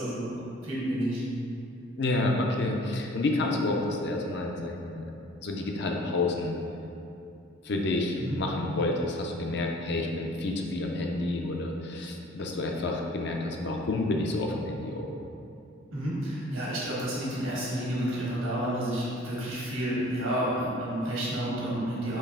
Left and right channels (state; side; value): normal; both; correlation 0.50